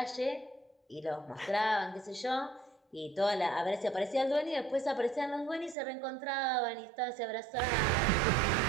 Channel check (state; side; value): drops out; left; at 5.8 s